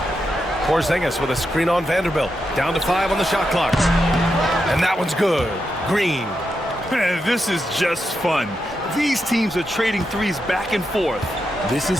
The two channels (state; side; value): normal; both; correlation 0.86